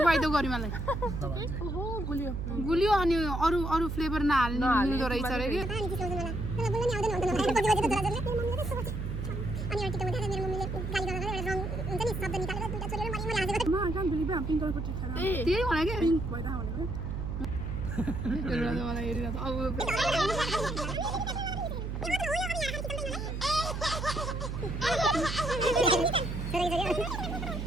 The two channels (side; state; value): right; noise; hum, 4 dB below the sound